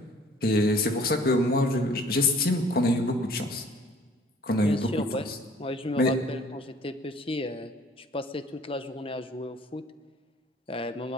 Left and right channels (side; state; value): both; normal; correlation 0.54